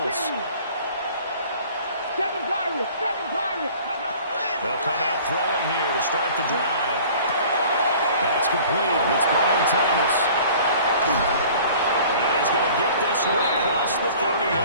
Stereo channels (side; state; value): both; inverted; correlation -0.48